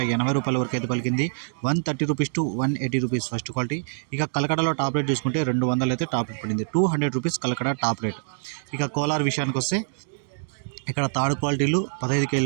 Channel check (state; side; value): silent; left; digital silence